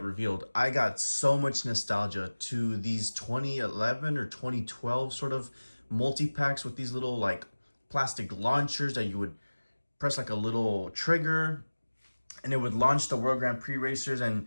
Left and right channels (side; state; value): both; inverted; correlation -1.00